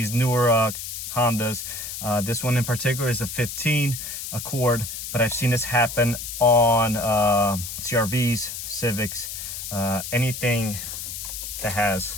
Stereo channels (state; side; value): noise; left; hiss, 7 dB below the sound